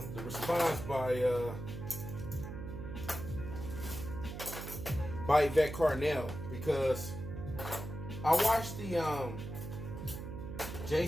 response by Yvette Carnell, because I watched the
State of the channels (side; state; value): right; noise; hum, 8 dB below the sound